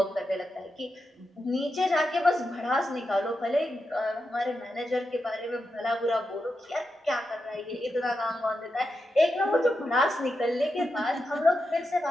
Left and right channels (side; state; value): both; normal; correlation 0.87